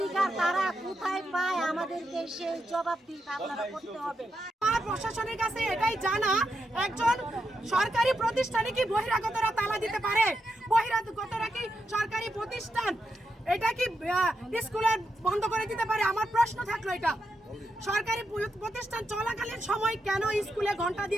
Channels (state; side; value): normal; both; correlation 0.84